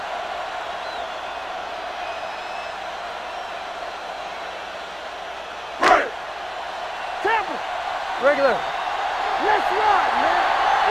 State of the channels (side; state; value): right; noise; hum, 29 dB below the sound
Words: Regular. Let's ride, man.